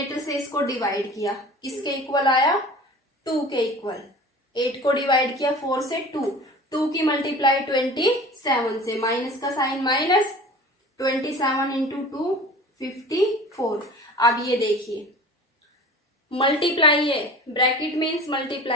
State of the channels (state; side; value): normal; both; correlation 0.40